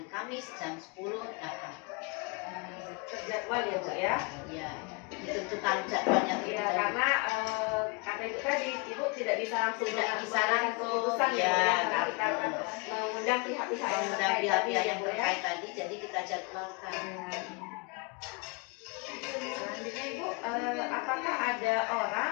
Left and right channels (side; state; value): right; quieter; 30.2 dB